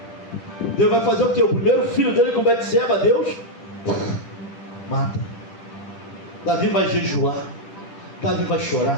Deus vai fazer o quê? O primeiro filho dele com Betseba, Deus mata. Davi vai jejuar, Davi vai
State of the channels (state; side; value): late; right; 10 ms